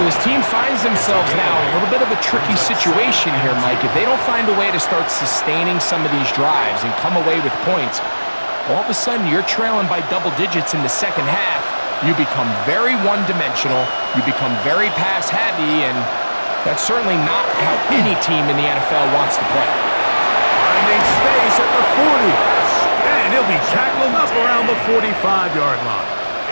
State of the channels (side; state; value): both; inverted; correlation -1.00